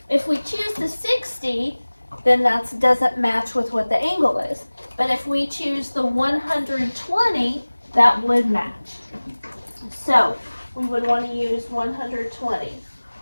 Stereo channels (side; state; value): both; inverted; correlation -1.00